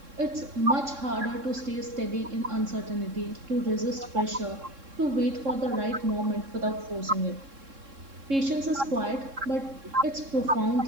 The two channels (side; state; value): left; late; 3.7 ms